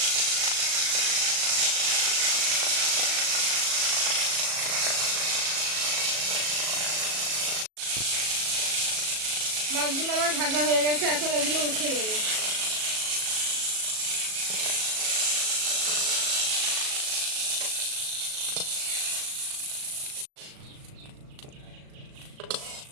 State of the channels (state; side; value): late; left; 37 ms